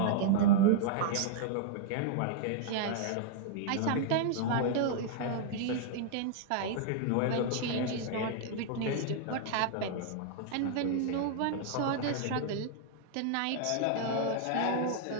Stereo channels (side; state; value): both; different; correlation -0.01